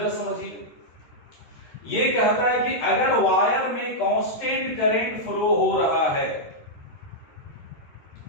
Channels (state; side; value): late; right; 13 ms